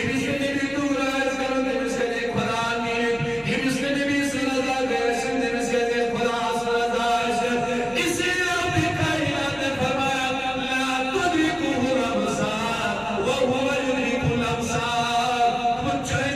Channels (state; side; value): identical; both; correlation 1.00